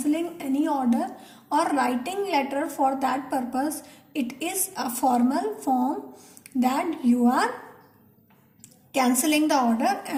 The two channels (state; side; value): identical; both; correlation 1.00